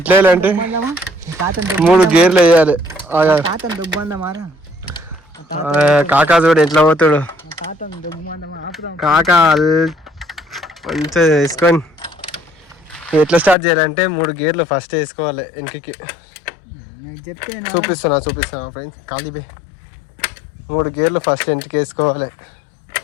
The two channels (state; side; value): drops out; right; at 13.6 s